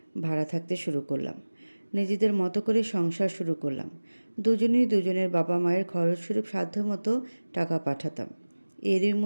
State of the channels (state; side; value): inverted; both; correlation -1.00